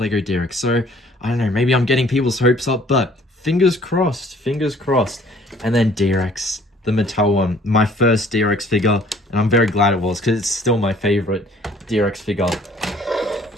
D Rex. So, I don't know, maybe I'm getting people's hopes up, but fingers crossed, fingers crossed. And then D Rex, the Mattel one, my first D Rex figure, and I'm very glad it was, because it's still my favorite D Rex figure.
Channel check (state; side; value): normal; both; correlation 0.56